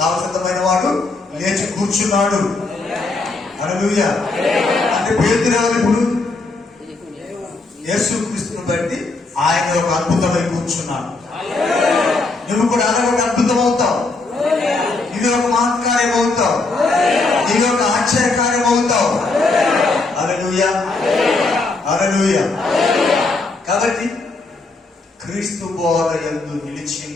వాడు లేచి కూర్చున్నాడు. హల్లెలూయా. అంటే పేతురు ఎవరు? ఇప్పుడు యేసుక్రీస్తుని బట్టి ఆయన ఒక అద్భుతమై కూర్చున్నాడు. నువ్వు కూడా అలా ఒక అద్భుతం అవుతావు. ఇది ఒక మహత్కార్యం అవుతావు. ఇది ఒక ఆశ్చర్యకార్యం అవుతావు. హల్లెలూయా, హల్లెలూయా. కాబట్టి క్రీస్తు బోధ యందు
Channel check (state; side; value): quieter; right; 3.5 dB